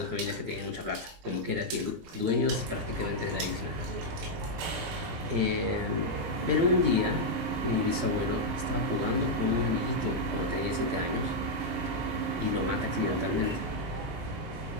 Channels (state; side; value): late; left; 18 ms